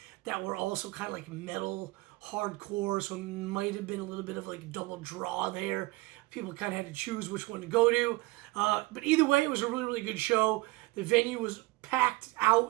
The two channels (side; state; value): left; quieter; 21.6 dB